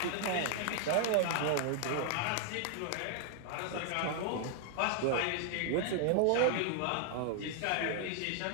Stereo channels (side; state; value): both; different; correlation 0.00